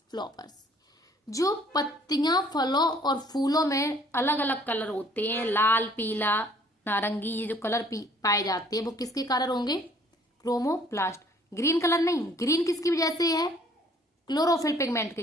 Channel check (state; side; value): normal; both; correlation 0.58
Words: flowers, जो पत्तियां फलों और फूलों में अलग अलग कलर होते हैं, लाल, पीला, नारंगी, ये जो कलर पाए जाते हैं वो किसके कारण होंगे, क्रोमोप्लास्ट। ग्रीन कलर नहीं, ग्रीन किसकी वजह से है, क्लोरोफिल पिगमेंट के